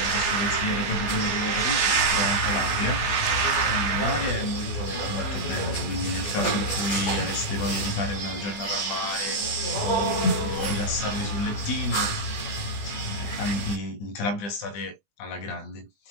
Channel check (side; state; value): right; late; 20 ms